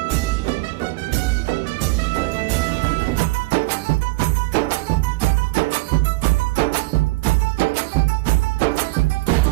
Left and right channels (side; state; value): left; quieter; 23.0 dB